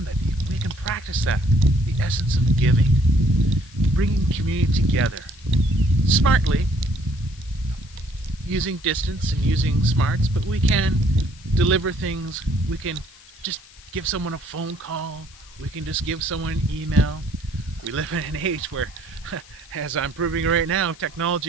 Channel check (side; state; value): left; noise; hiss, 23 dB below the sound